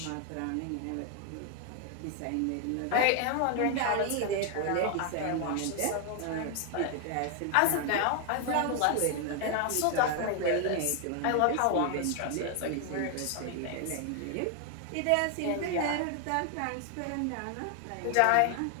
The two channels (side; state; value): both; different; correlation 0.00